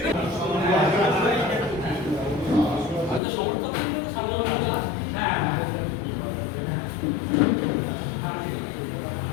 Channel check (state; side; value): drops out; right; at 3.2 s